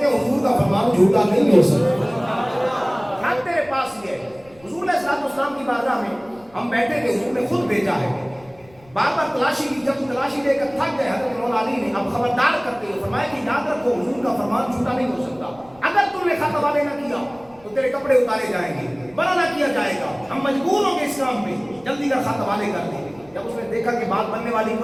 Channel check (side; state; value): left; noise; rumble, 27 dB below the sound